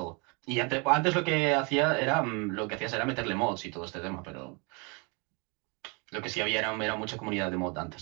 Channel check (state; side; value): quieter; left; 30.7 dB